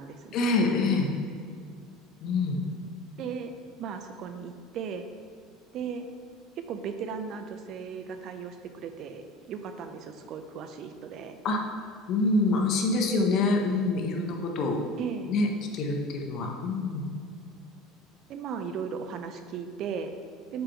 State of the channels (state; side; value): normal; both; correlation 0.37